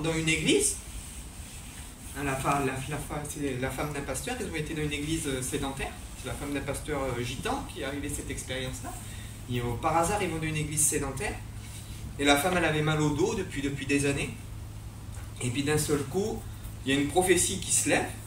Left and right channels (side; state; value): both; identical; correlation 1.00